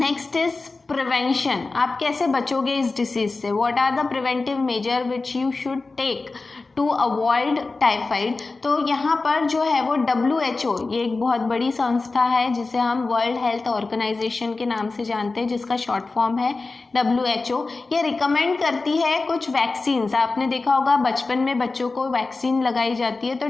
इज प्रिवेंशन। आप कैसे बचोगे इस डिसीज से, what are the preventive measure which you should take to avoid typhoid. तो यहाँ पर जो है वो WHO, ये एक बहुत बड़ी संस्था है जिसे हम वर्ल्ड हेल्थ ऑर्गेनाइजेशन के नाम से जानते हैं, जिसका शॉर्ट फॉर्म है WHO। ये रिकमेंड करती है कुछ वैक्सीन्स। आपने देखा होगा बचपन में बच्चों को वैक्सीन लगाई जाती है, तो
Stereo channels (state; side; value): quieter; right; 3.7 dB